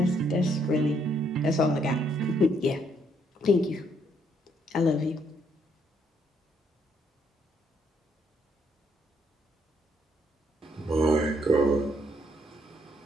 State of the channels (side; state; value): both; normal; correlation 0.71